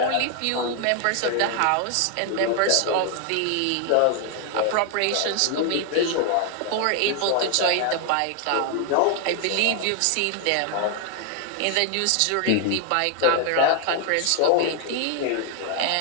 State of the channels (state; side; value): different; both; correlation 0.00